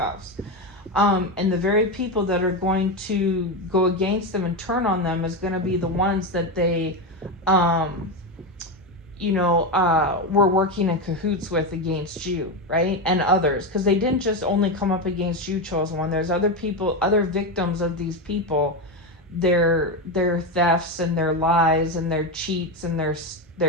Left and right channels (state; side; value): normal; both; correlation 0.13